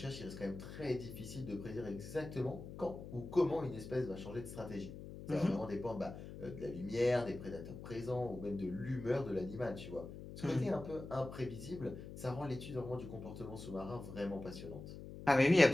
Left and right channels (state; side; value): noise; left; hum, 11 dB below the sound